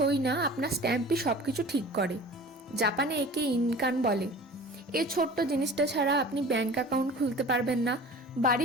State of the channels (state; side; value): normal; both; correlation 0.41